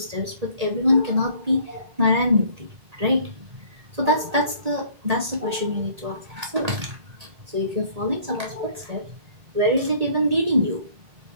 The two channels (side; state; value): left; late; 1.8 ms